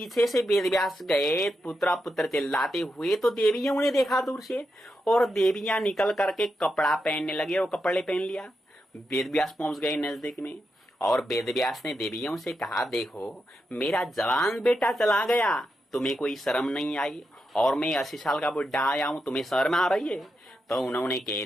से वेदव्यास गए पुत्र पुत्र चिल्लाते हुए, तो देवियां उन्हें देखा दूर से, और देवियां निकल करके कपड़ा पहनने लगी और कपड़े पहन लिया। वेदव्यास पहुंच गए नजदीक में और वेदव्यास ने देवियों से कहा, देखो मेरा जवान बेटा चला गया, तुम्हें कोई शर्म नहीं आई, और मैं 80 साल का बुढ़ा आया हूं, तुम्हें शर्म आ रही है? तो उन्होंने कह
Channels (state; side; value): normal; both; correlation 0.86